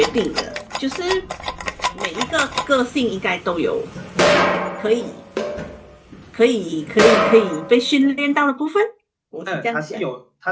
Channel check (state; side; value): identical; both; correlation 1.00